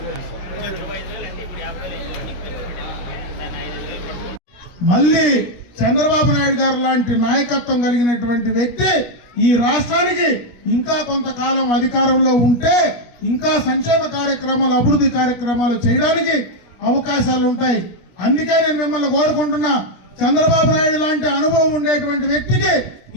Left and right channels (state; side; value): late; right; 17 ms